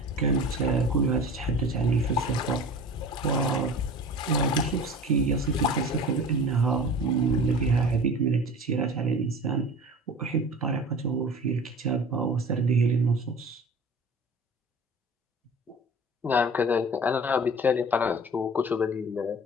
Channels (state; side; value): normal; both; correlation 0.39